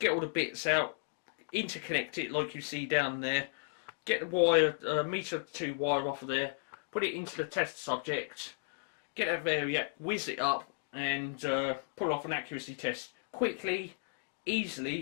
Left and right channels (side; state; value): right; silent; digital silence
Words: all the bits out, interconnect it like you see down there, get the wire, meter 2 wire off of there, put it into the test subject, get that variac, whiz it up, and pull off an accuracy test quickly,